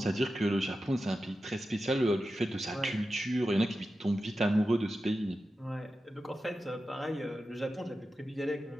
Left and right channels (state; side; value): normal; both; correlation 0.92